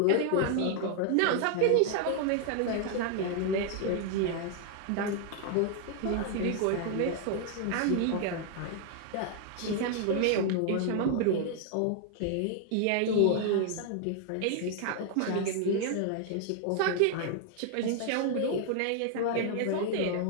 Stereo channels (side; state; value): both; different; correlation 0.00